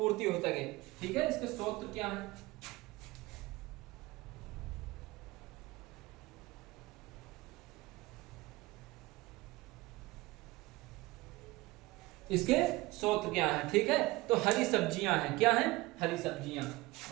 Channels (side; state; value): left; quieter; 20.7 dB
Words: हो सके। ठीक है, इसके स्रोत क्या है? इसके स्रोत क्या है? ठीक है, तो हरी सब्जियां हैं। क्या हैं? हरी सब्जियां।